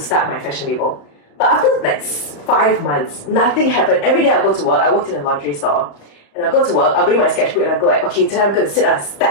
my fashion label. But after 5 months, nothing happened. Every day I go to work, I worked in a lingerie store, and I'll go to work, I'll bring my sketchbook, and I'll go okay, today I'm going to sit down and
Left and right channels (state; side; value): late; right; 35 ms